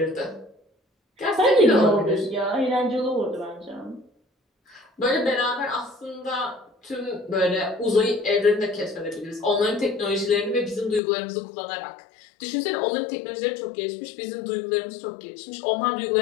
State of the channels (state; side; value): drops out; right; at 11.0 s